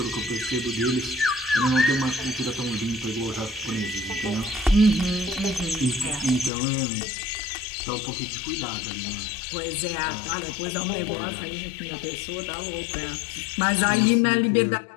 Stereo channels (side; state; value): right; drops out; at 6.5 s